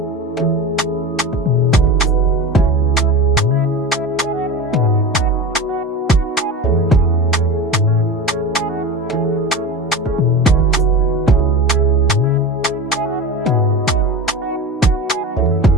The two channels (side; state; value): both; normal; correlation 0.28